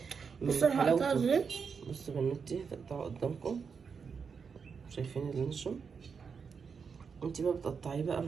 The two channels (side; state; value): left; quieter; 5.9 dB